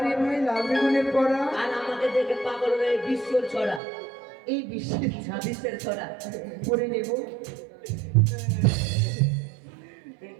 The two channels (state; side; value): drops out; left; at 3.8 s